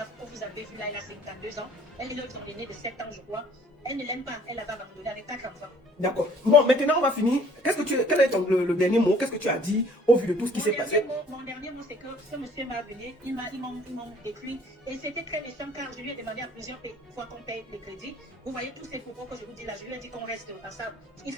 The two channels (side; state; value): both; normal; correlation 0.55